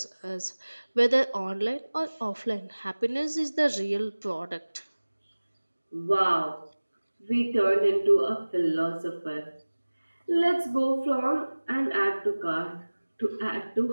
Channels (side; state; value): both; inverted; correlation -1.00